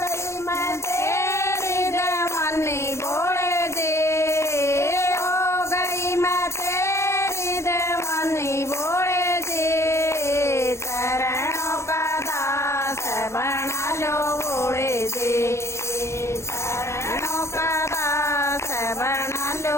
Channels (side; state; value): right; late; 0.13 ms